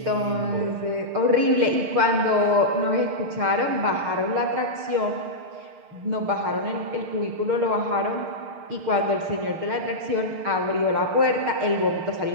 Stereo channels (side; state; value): left; late; 6.6 ms